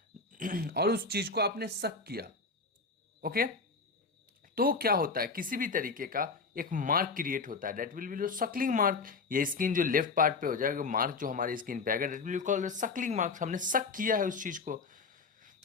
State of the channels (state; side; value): quieter; right; 4.4 dB